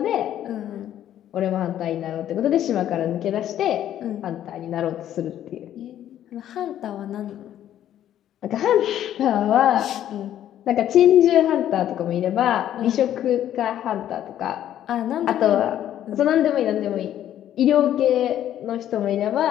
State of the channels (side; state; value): right; quieter; 11.4 dB